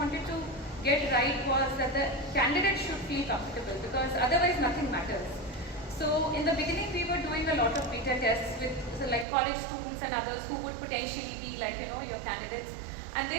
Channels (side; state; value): left; drops out; at 9.2 s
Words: to get right was that the candidate should feel comfortable because otherwise nothing matters. So in the beginning, we were doing a lot of beta tests with like college students and others who would potentially be like, your candidates. And